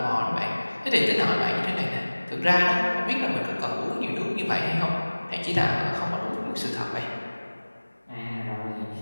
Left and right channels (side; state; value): both; inverted; correlation -1.00